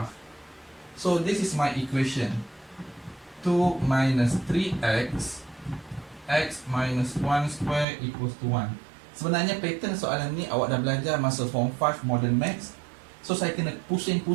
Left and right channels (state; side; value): drops out; left; at 7.9 s